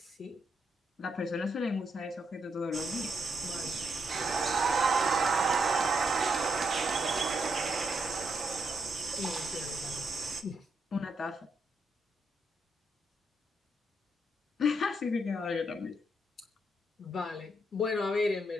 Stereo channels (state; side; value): normal; both; correlation 0.79